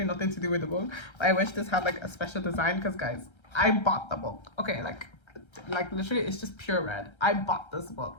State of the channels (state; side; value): late; right; 1.3 ms